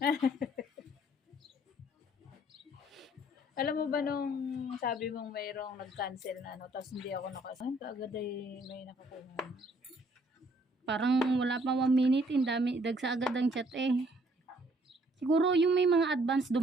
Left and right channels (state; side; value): normal; both; correlation 0.63